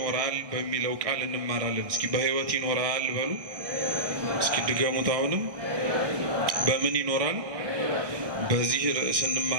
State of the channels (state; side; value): late; left; 1.6 ms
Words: በሚለው ቃል እንማራለን። እስኪ በሕይወት ይኖራል በሉ። እስኪ ድገሙት። አሁንም በምን ይኖራል? በዚህ ርዕስ